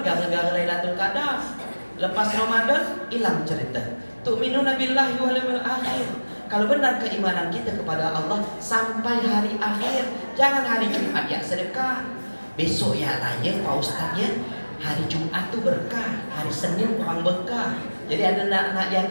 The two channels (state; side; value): inverted; both; correlation -1.00